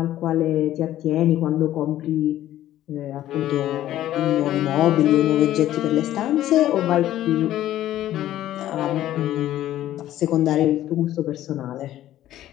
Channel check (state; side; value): quieter; right; 13.2 dB